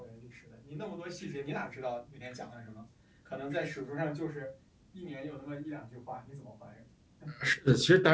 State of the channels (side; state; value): both; identical; correlation 1.00